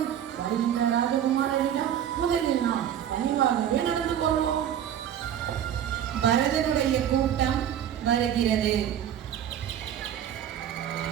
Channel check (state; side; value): quieter; left; 10.0 dB